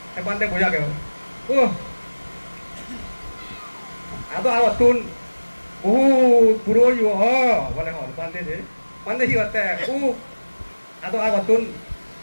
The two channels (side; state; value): both; inverted; correlation -1.00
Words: হ্যাঁ বান্ধে বোঝা গেল ও আদো তুন বহুত বুড়ো ইউ হ বলে হল বান্ধে কি হতে আদো তুন